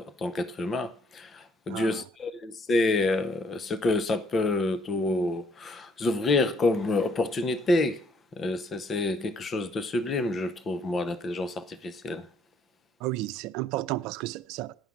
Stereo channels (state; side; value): normal; both; correlation 0.65